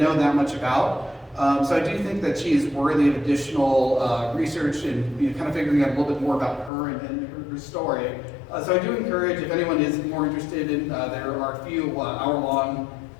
that much about. So I do think that she is worthy of additional research and kind of figuring out a little bit more about her and her story. So I do encourage, if anyone is more interested in, there are a few hour-long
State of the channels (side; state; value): right; drops out; at 6.7 s